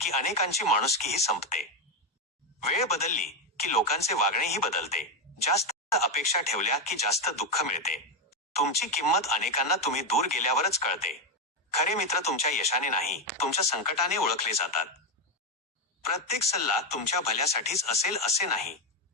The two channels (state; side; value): normal; both; correlation 0.08